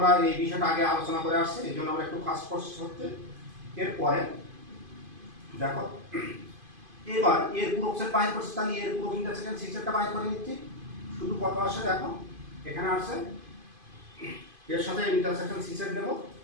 এই বিষয়টা আগে আলোচনা করে আসছি এই জন্য আমরা একটু ফাস্ট প্রসেস হচ্ছে। এরপরে দেখো এবার এর পূরক সেট বাহির করছি, তাহলে এর পূরক ইন্টারসেকশন সি সেটটা বাহির করে নিচ্ছি। শুধু কত আসে দেখো, এখানে আসছে এর সাথে ইন্টারসেকশন সি সেট দেব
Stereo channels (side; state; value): left; late; 2.5 ms